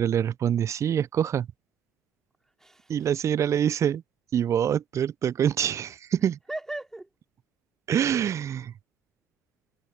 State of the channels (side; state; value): left; quieter; 8.9 dB